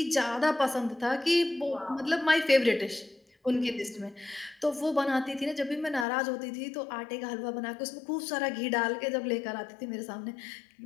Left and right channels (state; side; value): drops out; right; at 6.1 s